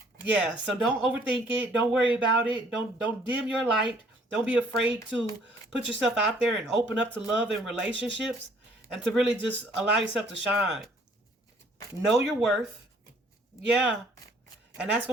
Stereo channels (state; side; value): normal; both; correlation 0.60